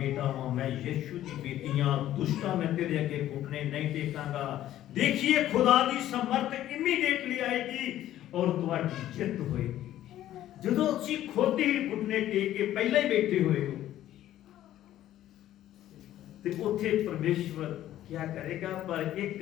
ਹਾਂ, ਮੈਂ ਯਿਸੂ ਦੀ ਬੇਟੀ ਹਾਂ, ਦੁਸ਼ਟਾਂ ਮੈਂ ਤੇਰੇ ਅੱਗੇ ਘੁਟਨੇ ਨਹੀਂ ਟੇਕਾਂਗਾ। ਦੇਖੀਏ ਖੁਦਾ ਦੀ ਸਮਰਥ ਇਮੀਡੀਏਟਲੀ ਆਏਗੀ ਔਰ ਤੁਹਾਡੀ ਜਿੱਤ ਹੋਏਗੀ। ਜਦੋਂ ਤੁਸੀਂ ਖੁਦ ਹੀ ਘੁਟਨੇ ਟੇਕ ਕੇ ਪਹਿਲਾਂ ਹੀ ਬੈਠੇ ਹੋਏ ਹੋ ਤੇ ਉੱਥੇ ਪਰਮੇਸ਼ਵਰ क्या करेगा? पर एक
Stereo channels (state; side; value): quieter; right; 13.0 dB